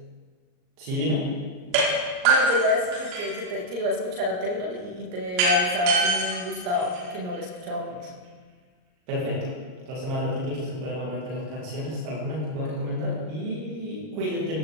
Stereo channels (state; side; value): late; left; 38 ms